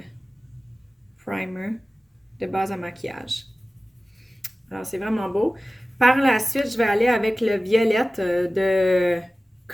primer, de base à maquillage. Alors, c'est vraiment beau. Par la suite, je vais aller avec le violette de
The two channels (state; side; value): normal; both; correlation 0.97